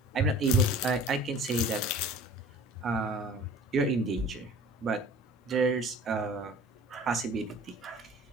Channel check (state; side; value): normal; both; correlation 0.45